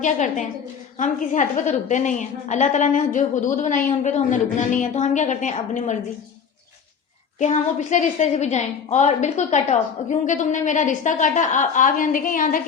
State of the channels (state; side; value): quieter; right; 6.7 dB